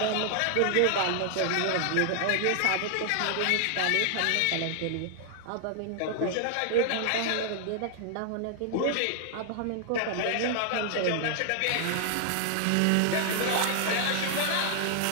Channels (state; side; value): different; both; correlation -0.01